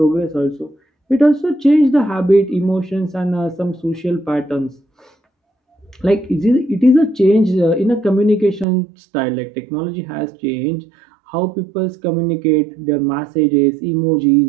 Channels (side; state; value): left; drops out; at 8.7 s